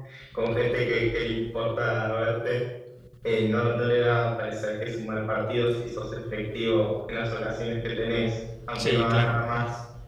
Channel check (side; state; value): both; identical; correlation 1.00